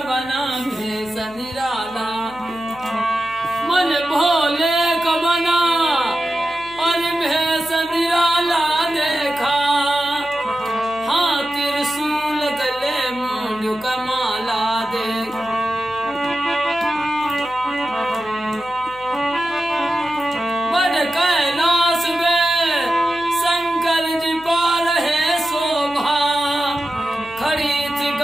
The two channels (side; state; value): left; noise; hum, 23 dB below the sound